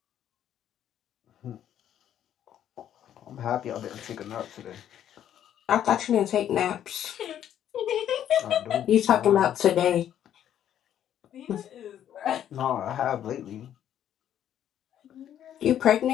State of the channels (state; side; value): quieter; right; 10.5 dB